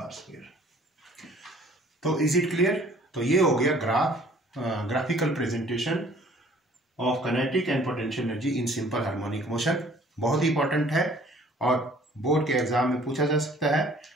square. तो इज इट क्लियर। तो ये हो गया graphical presentation of kinetic and potential energy in simple harmonic motion. बहुत ही इंपॉर्टेंट है और बोर्ड के एग्जाम में पूछा जा सकता है,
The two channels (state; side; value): normal; both; correlation 0.54